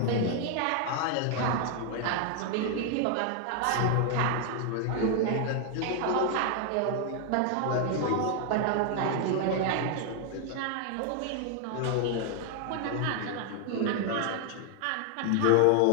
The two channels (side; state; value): both; different; correlation 0.00